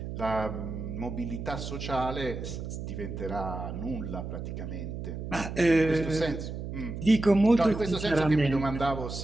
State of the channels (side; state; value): right; noise; hum, 7 dB below the sound